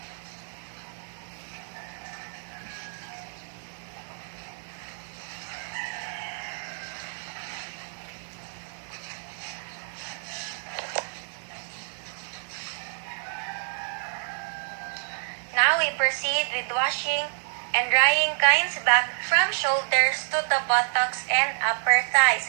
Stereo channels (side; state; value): left; silent; 59 dB below the other